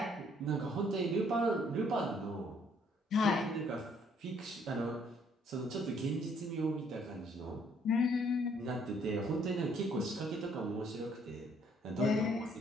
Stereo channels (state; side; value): normal; both; correlation 0.65